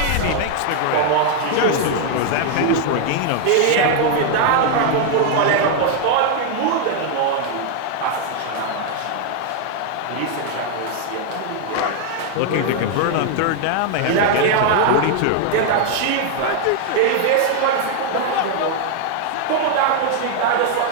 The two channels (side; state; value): both; different; correlation 0.00